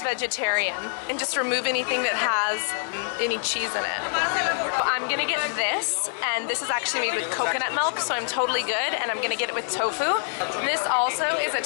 vegetarian, and just remove anything that has any cheese in it. I'm gonna get this, and this is actually made with coconut milk, so I'm totally good, and I'm gonna get it with tofu. This also is a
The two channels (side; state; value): right; silent; digital silence